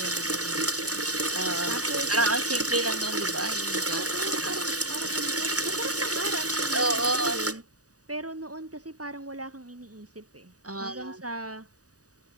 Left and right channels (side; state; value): left; late; 0.67 ms